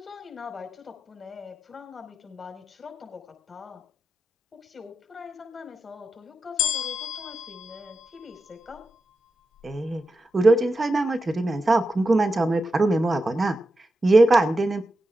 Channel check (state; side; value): normal; both; correlation 0.90